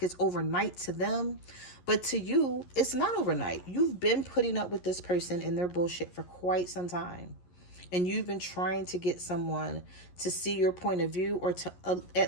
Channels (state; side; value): late; right; 11 ms